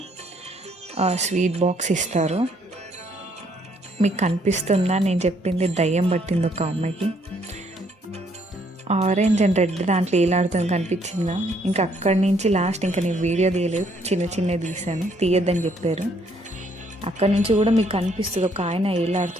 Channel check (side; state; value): both; normal; correlation 0.68